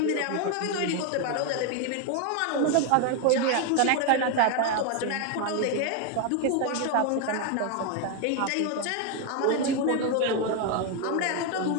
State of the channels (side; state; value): both; different; correlation 0.01